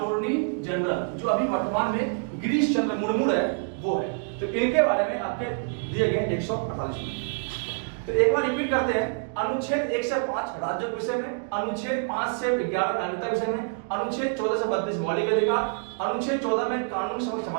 जनरल, जो अभी वर्तमान में गिरीश चंद्र मुर्मू है, वो है। तो इनके बारे में आपके दिए गए 148 में। तो एक बार रिपीट करते हैं। अनुच्छेद 1 से 5 राज्यों के विषय में, अनुच्छेद 5 से 11 नागरिकता के विषय में, अनुच्छेद 14 से 32 मौलिक अधिकार, अनुच्छेद 14 में कानून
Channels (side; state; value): left; silent; 60 dB below the other